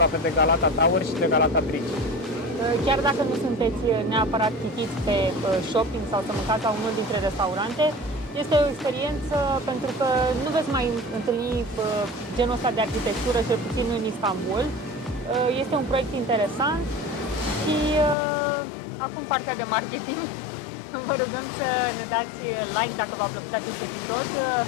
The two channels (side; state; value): right; drops out; at 18.2 s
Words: de Galata Tower și de Galata Bridge. Chiar dacă nu sunteți neapărat chitiți pe shopping sau să mâncați la unul dintre restaurante, este o experiență pentru că nu veți mai întâlni genul ăsta de arhitectură, cel puțin în Istanbul. Este un proiect interesant și acum partea de marketing. Vă rugăm să ne dați like dacă v-a plăcut acest episod